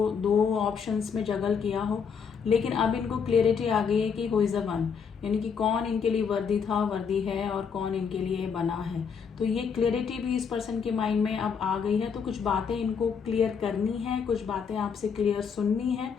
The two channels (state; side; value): quieter; right; 6.4 dB